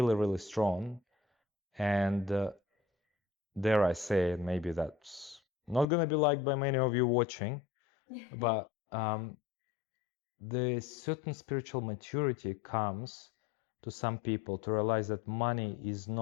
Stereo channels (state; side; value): drops out; right; at 5.9 s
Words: really strong. And dare I say, maybe that's not going to be liked by many of you watching, but the certain spiritual maturity comes to some people to realize that money is